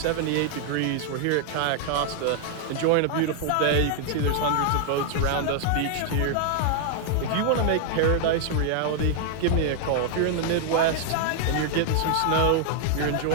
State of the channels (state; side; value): different; both; correlation 0.00